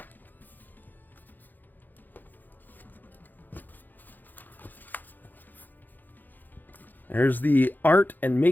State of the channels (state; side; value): late; right; 0.087 ms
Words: There's the art and